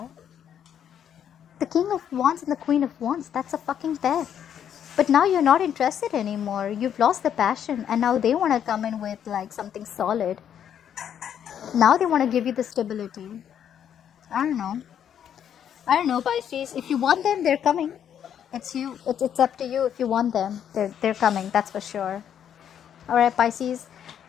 King of Wands and the Queen of Wands, that's a fucking pair. But now you're not interested anymore. You've lost the passion and now they want to come in with like something solid. Now they want to give you the stability. I don't know, Pisces. If you want them, they're coming. It's you. It's up to you. If you want them, they're coming. That's for sure. All right, Pisces.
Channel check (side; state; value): right; quieter; 9.2 dB